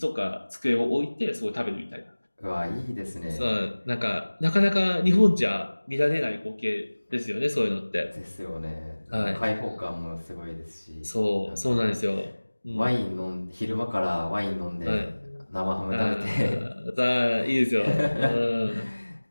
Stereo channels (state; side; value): inverted; both; correlation -1.00